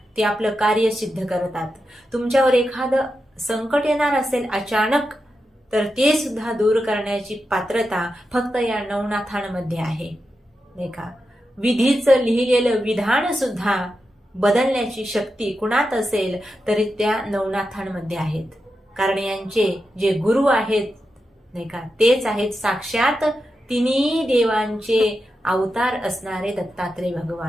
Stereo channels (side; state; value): both; normal; correlation 0.89